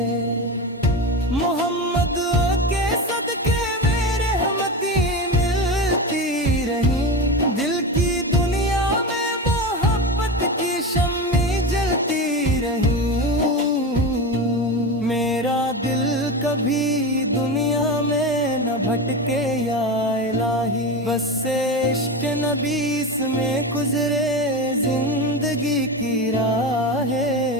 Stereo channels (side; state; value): both; normal; correlation 0.22